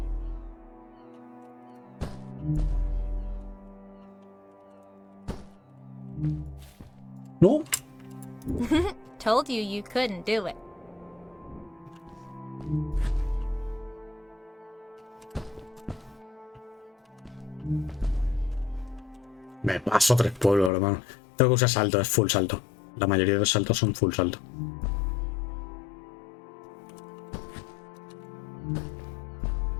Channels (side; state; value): right; drops out; at 20.7 s